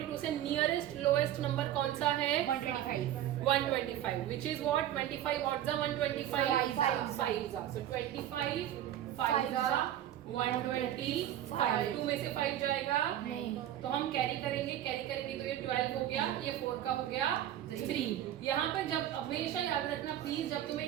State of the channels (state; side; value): quieter; left; 11.9 dB